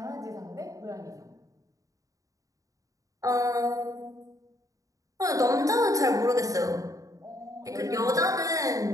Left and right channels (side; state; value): left; late; 0.16 ms